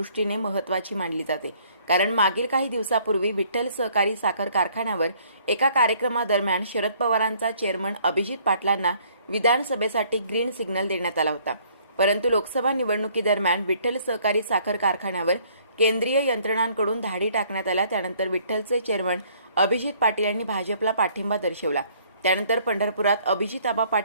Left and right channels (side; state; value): both; inverted; correlation -0.61